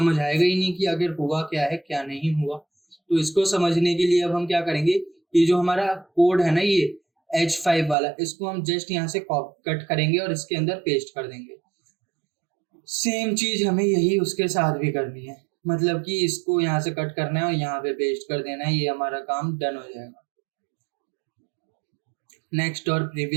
आएगा ही नहीं कि आखिर हुआ क्या है क्या नहीं हुआ। तो इसको समझने के लिए अब हम क्या करेंगे, ये जो हमारा कोड है ना, ये H5 वाला, इसको हम जस्ट यहाँ से कट करेंगे और इसके अंदर पेस्ट कर देंगे। सेम चीज हमें यही उसके साथ भी करनी है, मतलब कि इसको यहाँ से कट करना है और यहाँ पे पेस्ट कर देना है, ये हमारा काम डन हो जाएगा। नेक्स्ट और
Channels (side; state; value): left; drops out; at 8.0 s